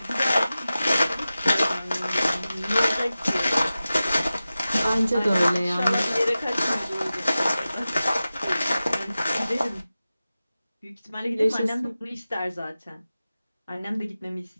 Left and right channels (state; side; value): inverted; both; correlation -0.95